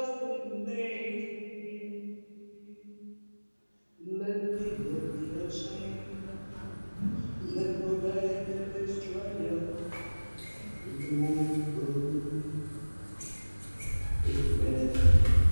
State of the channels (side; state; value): both; inverted; correlation -1.00